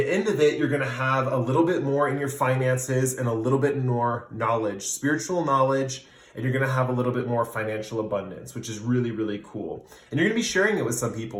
end of it, you're going to have a little bit more in your finances and a little bit more knowledge, spiritual knowledge, and you're going to have a little bit more financial abundance, which is really, really cool. And you're going to be sharing it with some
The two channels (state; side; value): identical; both; correlation 1.00